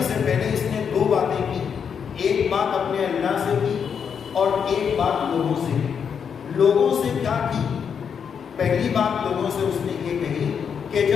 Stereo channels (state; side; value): quieter; right; 7.1 dB